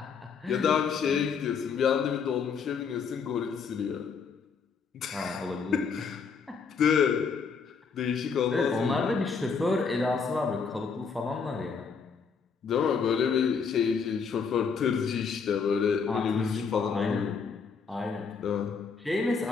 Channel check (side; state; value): right; quieter; 5.7 dB